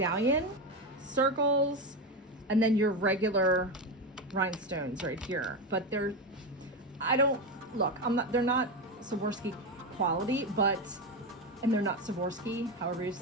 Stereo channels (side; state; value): both; normal; correlation 0.14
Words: circles, and then your regular rhinestones right here. But they're, they're not Swarovski quality, but, and they're not Swarovski, however you